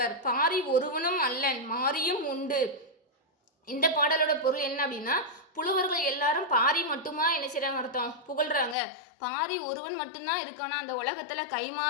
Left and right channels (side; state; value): right; drops out; at 8.8 s